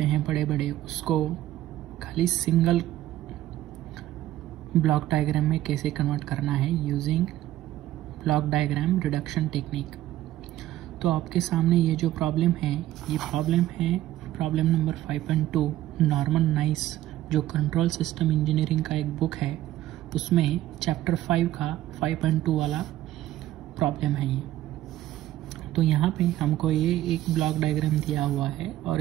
हैं बड़े बड़े, उसको खाली सिंगल ब्लॉक डायग्राम में कैसे कन्वर्ट करना है using block diagram reduction technique. तो आपके सामने ये जो प्रॉब्लम है, ये प्रॉब्लम है प्रॉब्लम नंबर 5.2 नॉर्मन नाइस, जो कंट्रोल सिस्टम इंजीनियरिंग का एक बुक है, उसमें चैप्टर 5 का 5.2 वाला प्रॉब्लम है ये। तो यहाँ पे हमको ये एक ब्लॉक डायग्राम दिया हुआ है और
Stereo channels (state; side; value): quieter; left; 14.2 dB